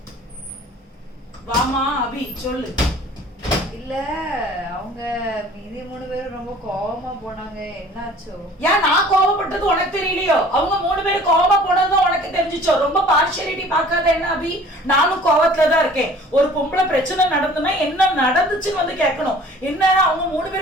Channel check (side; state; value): both; normal; correlation 0.49